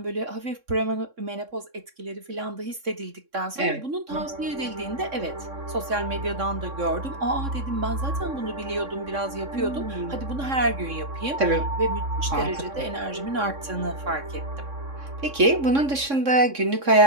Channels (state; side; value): late; left; 3.6 ms